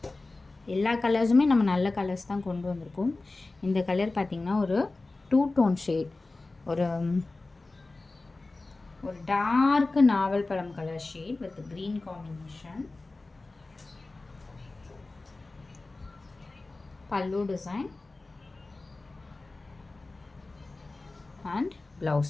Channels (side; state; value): right; quieter; 3.3 dB